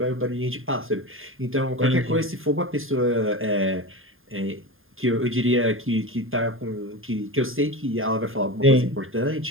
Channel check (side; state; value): left; late; 0.59 ms